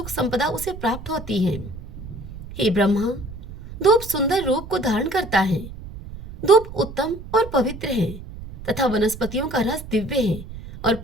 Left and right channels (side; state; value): right; noise; rumble, 13 dB below the sound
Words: संपदा उसे प्राप्त होती है। हे ब्रह्मा, धूप सुंदर रूप को धारण करता है। धूप उत्तम और पवित्र है तथा वनस्पतियों का रस दिव्य है और